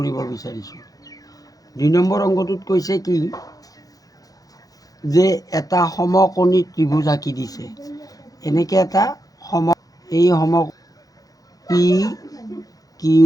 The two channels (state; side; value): late; right; 0.17 ms